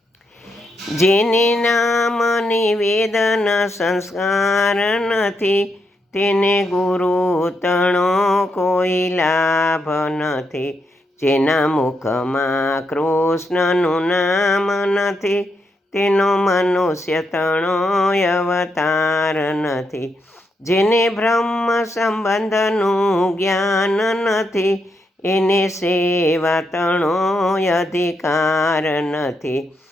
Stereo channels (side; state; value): both; normal; correlation 0.81